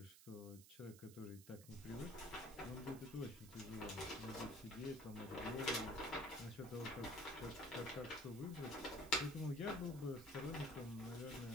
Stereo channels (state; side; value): noise; right; hiss, 17 dB below the sound